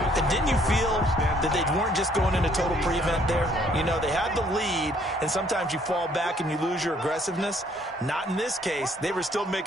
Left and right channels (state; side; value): normal; both; correlation 0.64